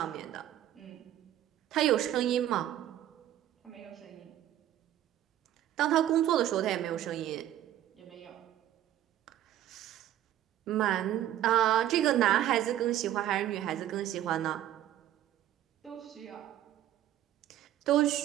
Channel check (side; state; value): left; quieter; 12.3 dB